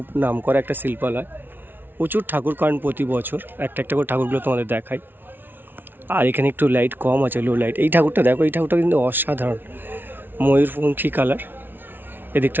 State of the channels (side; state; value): left; late; 0.098 ms